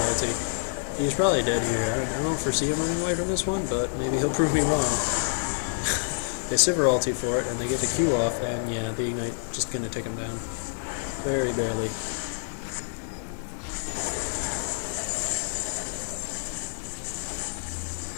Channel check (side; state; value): right; silent; digital silence